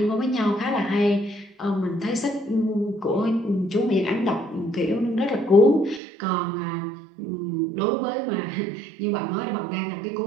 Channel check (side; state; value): left; drops out; at 6.0 s